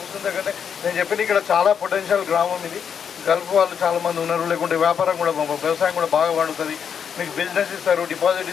దగ్గర నేను చెప్పిన ఇక్కడ చాలా పొటెన్షియల్ గ్రామం ఇది. గల్ఫ్ వాళ్ళు చాలామంది ఉన్నారు, లేకుంటే వ్యాపారం కూడా వ్యవసాయం కూడా బాగా పండుతుంది. మీకు బిజినెస్ ఇస్తారు, డిపాజిట్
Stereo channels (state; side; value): quieter; right; 7.5 dB